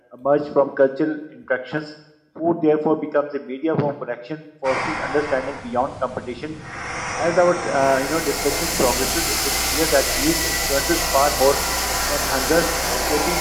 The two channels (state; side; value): identical; both; correlation 1.00